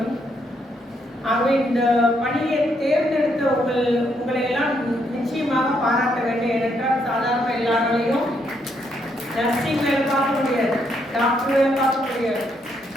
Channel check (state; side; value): normal; both; correlation 0.75